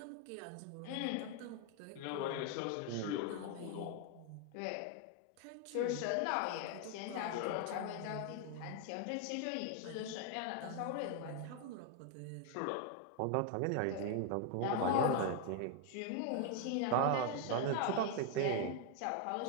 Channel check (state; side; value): different; both; correlation 0.01